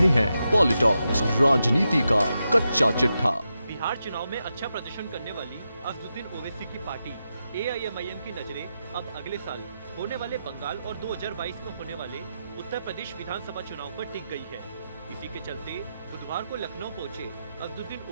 हैं पॉलिटॉक्स, राजनीति का कच्चा चिट्ठा। बिहार चुनाव में अच्छा प्रदर्शन करने वाली असदुद्दीन ओवैसी की पार्टी एआईएमआईएम की नजरें अब अगले साल होने वाले बंगाल और 2022 में होने वाले उत्तर प्रदेश विधानसभा चुनाव पर टिक गई है। इसी के चलते बुधवार को लखनऊ पहुंचे असदुद्दीन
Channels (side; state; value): both; inverted; correlation -0.88